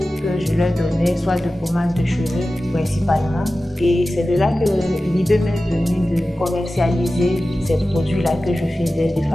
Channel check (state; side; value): normal; both; correlation 0.95